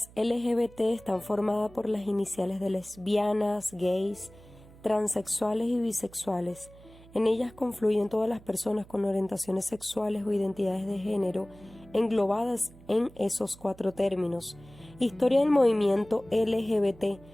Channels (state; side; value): noise; right; hum, 22 dB below the sound